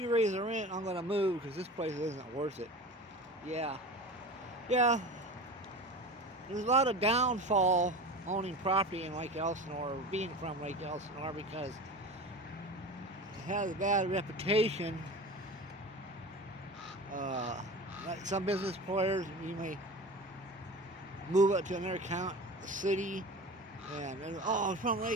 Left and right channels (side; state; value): both; normal; correlation 0.33